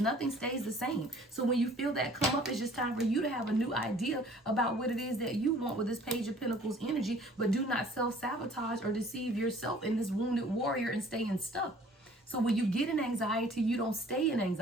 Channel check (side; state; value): both; normal; correlation 0.53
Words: Nothing stays the same. So when you feel that come up, it's just time for you to have a new idea about what it is that you want with this Page of Pentacles energy. But do not self-sabotage or deceive yourself in this wounded warrior and staying stuck. So when you get in anxiety, you don't stay in